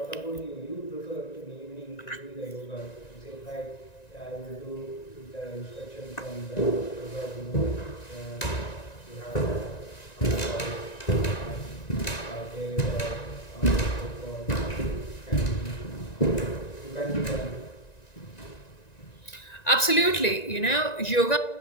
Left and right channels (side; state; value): right; late; 1.9 ms